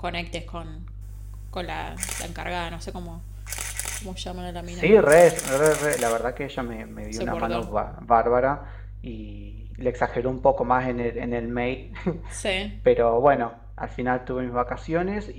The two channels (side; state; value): both; identical; correlation 1.00